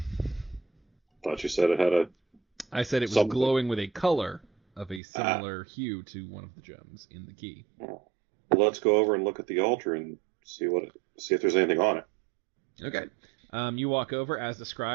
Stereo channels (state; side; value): drops out; left; at 5.0 s